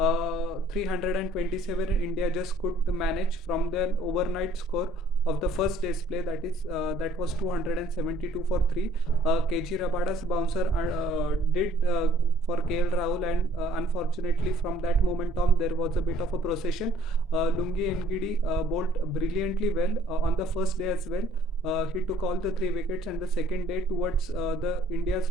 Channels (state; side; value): normal; both; correlation 0.59